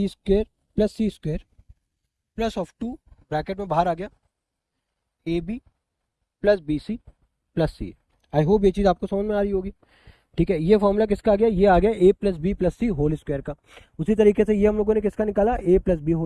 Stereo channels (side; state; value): both; identical; correlation 1.00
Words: square plus c square plus of 2 bracket में बाहर आ गया a b plus b c plus c. I hope ये चीज़ आपको समझ में आ रही होगी, ठीक है। ये फॉर्मूला किसका आ गया, ये आ गया ए plus b plus c whole square का। उसी तरीके से ये हम लोगों ने किसका निकाला, ए प्लस बी